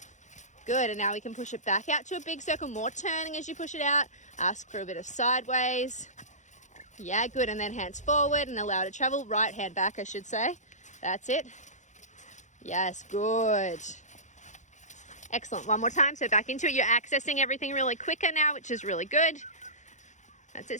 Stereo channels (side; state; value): right; late; 0.35 ms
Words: Good, and now we can push it back out to a big circle, more turning as you push it out. Ask for a bit of sideways. Yeah, good, and then hands forward and allow it to travel. Right hand back, I should say. That's it. Yes, good. Excellent, one more time, so back into it. You're accessing everything really quicker now, which is really good. That's